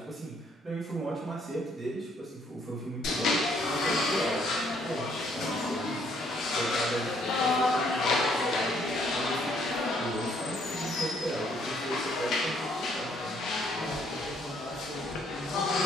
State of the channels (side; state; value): both; normal; correlation 0.67